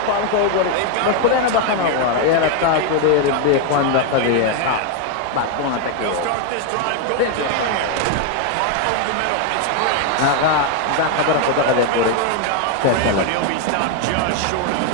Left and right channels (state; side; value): different; both; correlation 0.01